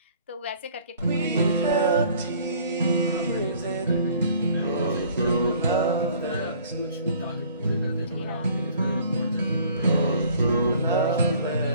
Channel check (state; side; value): inverted; both; correlation -0.54